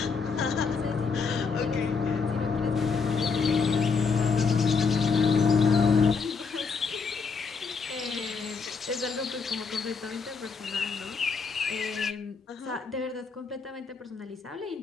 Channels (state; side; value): quieter; right; 5.1 dB